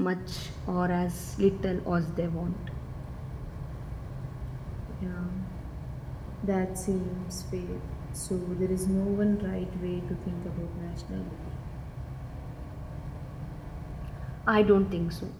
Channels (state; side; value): identical; both; correlation 1.00